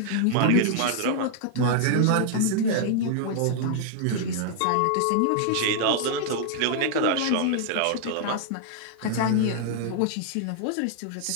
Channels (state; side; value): different; both; correlation 0.00